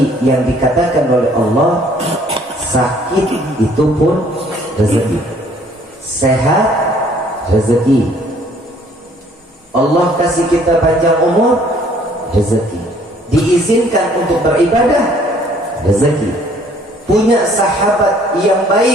yang dikatakan oleh Allah, sakit itu pun rezeki, sehat rezeki, Allah kasih kita panjang umur rezeki, diizinkan untuk beribadah rezeki, punya sahabat yang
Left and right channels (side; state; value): both; normal; correlation 0.59